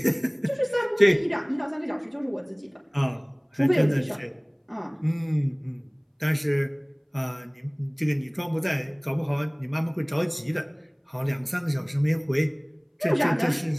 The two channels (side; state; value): both; identical; correlation 1.00